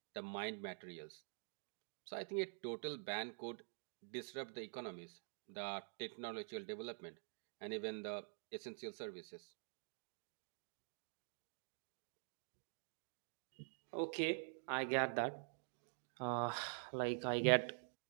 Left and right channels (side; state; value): left; silent; digital silence